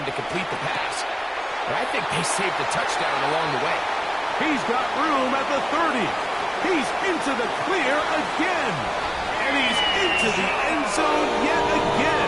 to complete the pass, but I think they saved the touchdown along the way. He's got room at the 30. He's into the clear again. And he's into the end zone yet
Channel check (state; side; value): identical; both; correlation 1.00